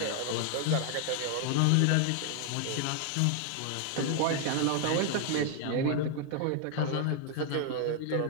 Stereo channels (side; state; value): both; different; correlation 0.00